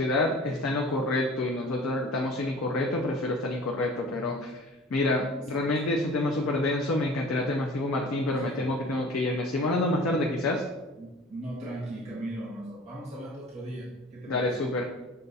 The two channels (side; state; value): both; normal; correlation 0.43